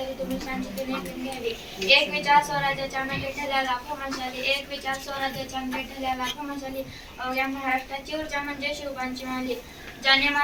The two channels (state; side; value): identical; both; correlation 1.00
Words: तुम्ही शांततेने ऐकून घ्यावे. एक विचार स्वराज्याच्या मेटे ठरल्या लाखो मशाली, एक विचार स्वराज्याच्या मेटे ठरल्या लाखो मशाली, अवघ्या महाराष्ट्राची ऊर्जा म्हणजे शिवबांची माली. ज्याने